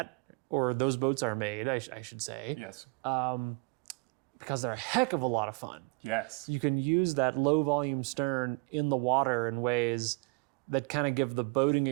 or those boats are made, I should say, Yes. because they're a heck of a lot of fun. Yes. You can use that low volume stern in the water in ways that kind of give the boating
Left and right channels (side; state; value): left; quieter; 32.2 dB